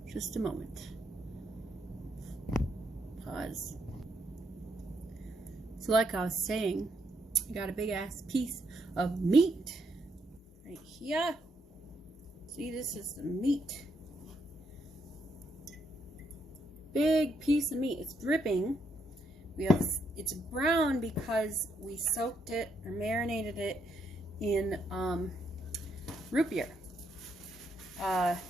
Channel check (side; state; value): both; normal; correlation 0.76